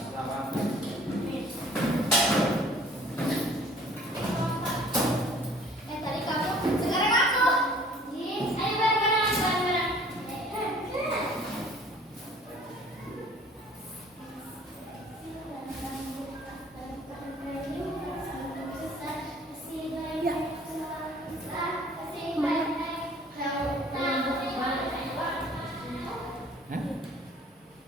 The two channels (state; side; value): normal; both; correlation 0.53